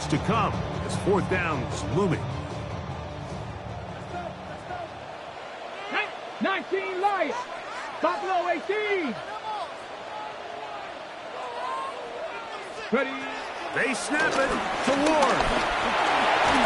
to come as 4th down's looming. 19 Lions. Buffalo 18. Ready? They snap it to Ward.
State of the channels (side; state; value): both; identical; correlation 1.00